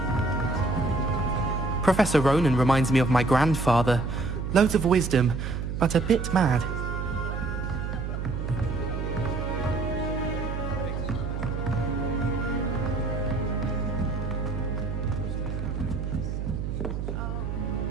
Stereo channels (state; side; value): noise; right; hum, 3 dB below the sound